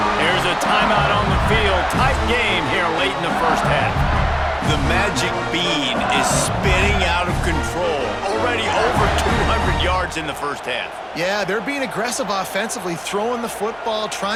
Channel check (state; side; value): identical; both; correlation 1.00